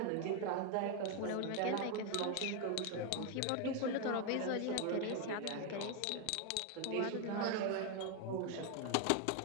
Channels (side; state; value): both; different; correlation 0.01